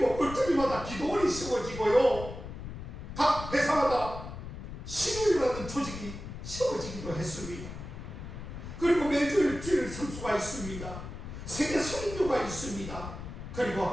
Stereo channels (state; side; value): noise; left; rumble, 9 dB below the sound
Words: 꿀떡이마다 기도원이 세워지고요 각 회사마다 신우이라는 조직이 세워지기도 했습니다. 그리고 매주일 주일 선수가 있습니다. 세계 선교가 있습니다. 그리고